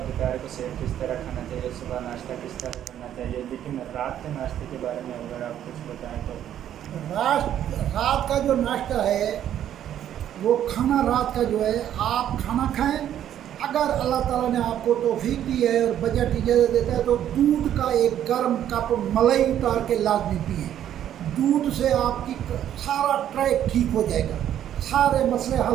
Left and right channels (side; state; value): left; quieter; 10.7 dB